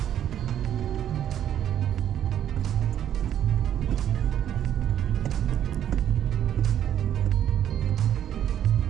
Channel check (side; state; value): left; quieter; 10.4 dB